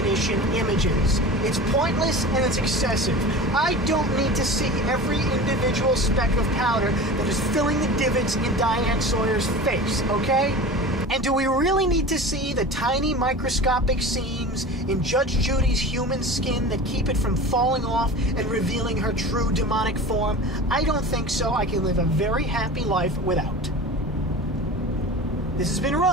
images. It's pointless and it's excessive. I don't need to see every individual speck of powder that is filling the divots in Diane Sawyer's face, okay? And do we really need to see the tiny microscopic seams in Judge Judy's human skin that keep it from falling off and revealing her true demonic form? I don't think so. I can live a very happy life without. This has been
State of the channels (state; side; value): normal; both; correlation 0.34